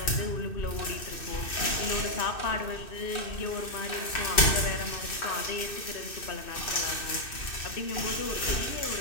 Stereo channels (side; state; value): right; late; 2.6 ms